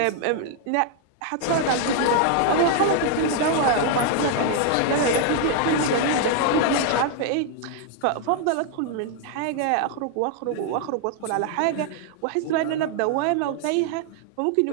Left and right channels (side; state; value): both; different; correlation 0.00